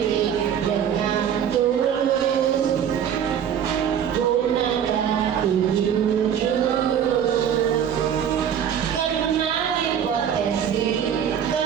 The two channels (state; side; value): quieter; left; 8.8 dB